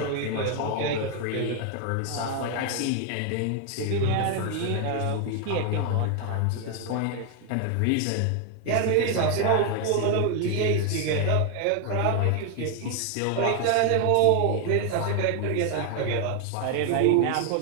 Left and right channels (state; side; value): different; both; correlation 0.01